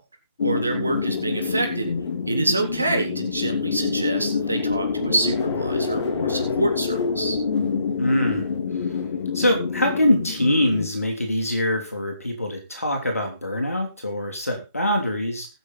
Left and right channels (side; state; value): both; inverted; correlation -0.73